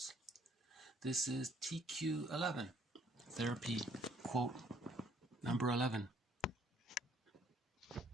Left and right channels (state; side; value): normal; both; correlation 0.63